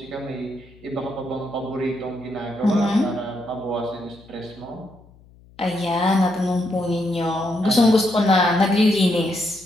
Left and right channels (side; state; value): left; noise; hum, 26 dB below the sound